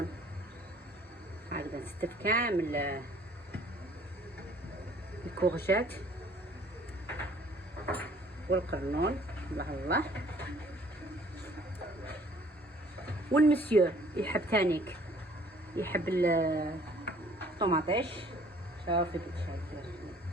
هكذا. نستف كامل الكورجات والقرنون. الله الله. والمسيو يحب تانيك يحب الطوماطيش. شوفي كي شايفه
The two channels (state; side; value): normal; both; correlation 0.56